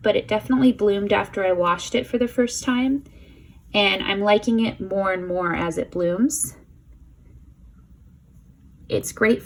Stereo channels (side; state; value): both; identical; correlation 1.00